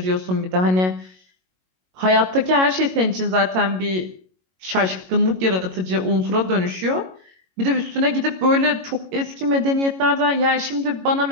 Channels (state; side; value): late; left; 22 ms